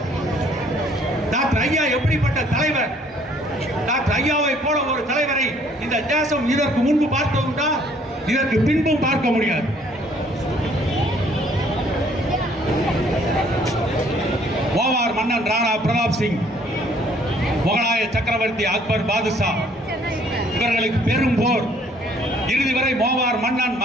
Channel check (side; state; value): both; normal; correlation 0.61